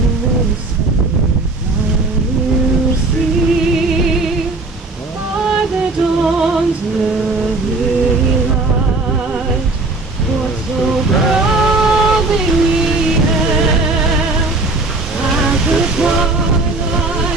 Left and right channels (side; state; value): left; quieter; 3.2 dB